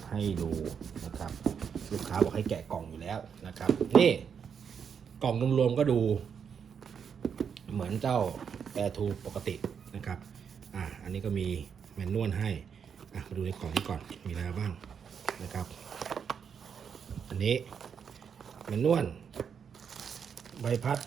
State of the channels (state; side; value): quieter; left; 7.1 dB